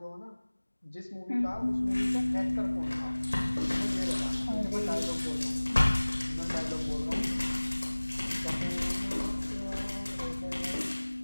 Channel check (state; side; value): inverted; both; correlation -1.00